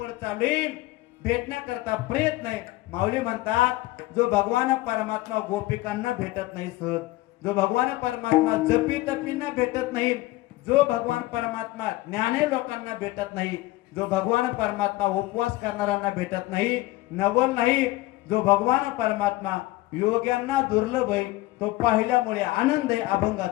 चालू आहे, भेटण्याकरता प्रयत्न आहे. माऊली म्हणतात जो भगवान परमात्मा गोपिकांना भेटत नाही सहज, जो भगवान परमात्मा जपी तपींना भेटत नाही, जो भगवान परमात्मा ज्ञाने लोकांना भेटत नाही, जो भगवान परमात्मा उपवास करणाऱ्यांना भेटत नाही, नवल नाही, जो भगवान परमात्मा योग्यांना दुर्लभ आहे, तो पाहिल्यामुळे आनंद आहे.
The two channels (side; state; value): right; quieter; 18.7 dB